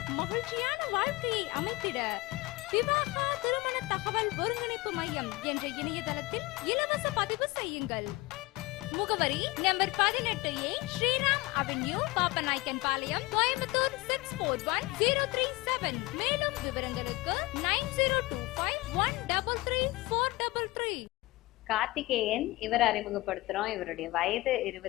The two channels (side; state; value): right; quieter; 20.9 dB